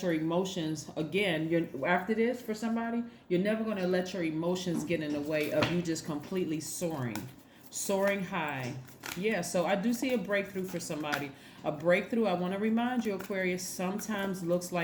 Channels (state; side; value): identical; both; correlation 1.00